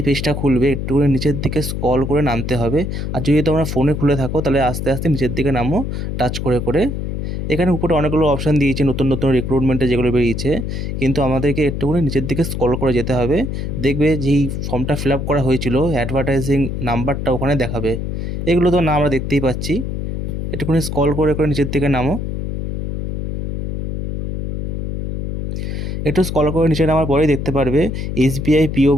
পেজটা খুলবে একটুখানি নিচের দিকে স্ক্রল করে নামতে হবে। আর যদি তোমরা ফোনে খুলে থাকো তাহলে আস্তে আস্তে নিচের দিকে নামো টাচ করে করে। এখানে উপরে অনেকগুলো অপশান দিয়েছে নতুন নতুন রিক্রুটমেন্টে যেগুলো বেরিয়েছে, কিন্তু আমাদেরকে একটুখানি নিচের দিকে স্ক্রল করে যেতে হবে। দেখবে যেই ফর্মটা ফিল আপ করা হয়েছিল অ্যাডভার্টাইজিং নাম্বারটা ওখানে দেখাবে। এগুলো তো না আমরা দেখতেই পাচ্ছি। একটুখানি স্ক্রল করে করে নিচের দিকে নামো। একটু স্ক্রল করে নিচে নামার পরেই দেখতে পারবে এসবিআই পিও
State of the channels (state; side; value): noise; left; hum, 3 dB below the sound